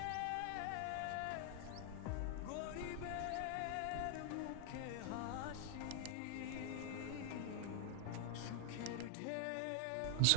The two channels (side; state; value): both; different; correlation 0.00